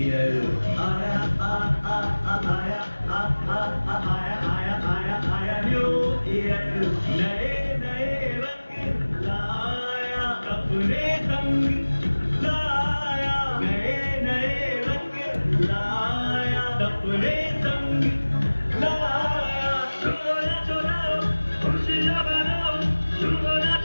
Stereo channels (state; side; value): inverted; both; correlation -1.00